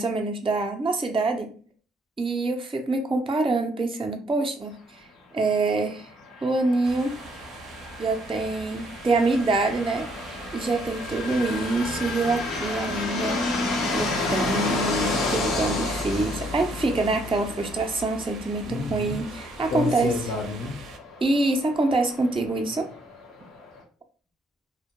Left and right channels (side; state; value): both; normal; correlation 0.69